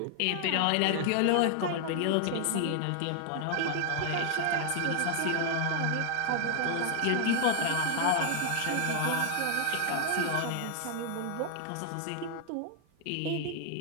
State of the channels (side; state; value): both; different; correlation 0.00